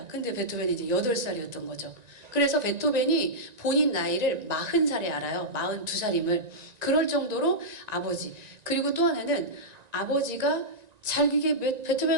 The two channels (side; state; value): left; late; 1.9 ms